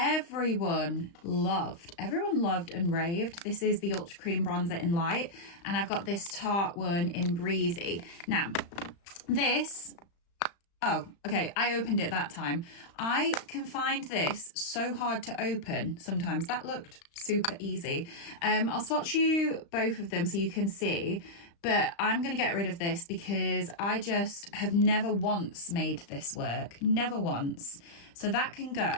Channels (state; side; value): late; right; 35 ms